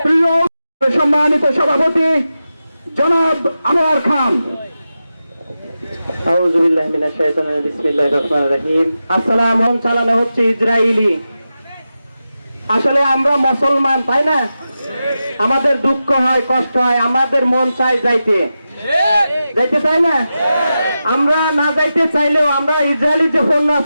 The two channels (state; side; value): inverted; both; correlation -0.91